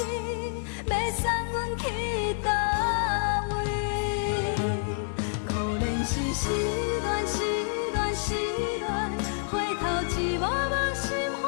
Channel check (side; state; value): right; silent; digital silence